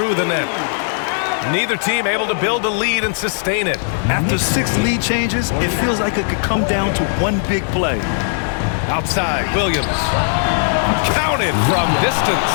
the net. Neither team able to build a lead and sustain it. After 6 lead changes, it feels like it could come down to one big play. Outside, Williams. Counted from distance.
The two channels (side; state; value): right; silent; digital silence